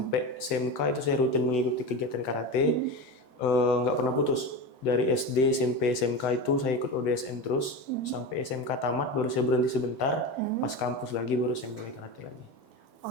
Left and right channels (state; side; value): late; right; 6.1 ms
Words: SMK itu saya rutin mengikuti kegiatan karate, nggak pernah putus. Dari SD, SMP, SMK itu saya ikut ODSN terus, sampai SMK tamat baru saya berhenti sebentar, pas kampus lagi baru saya mulai karate lagi.